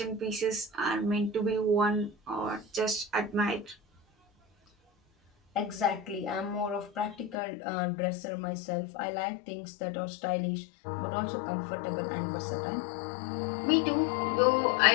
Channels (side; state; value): right; drops out; at 7.4 s